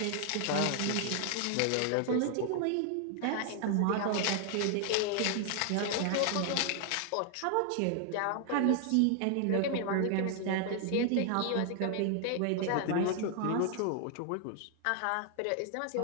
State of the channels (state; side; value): different; both; correlation 0.00